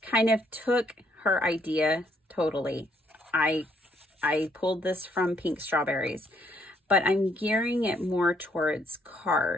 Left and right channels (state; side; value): normal; both; correlation 0.70